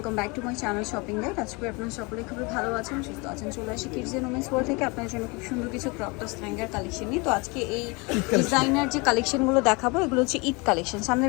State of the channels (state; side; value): quieter; right; 28.0 dB